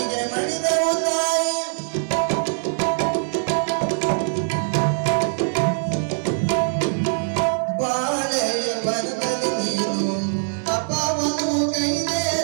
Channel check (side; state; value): left; silent; digital silence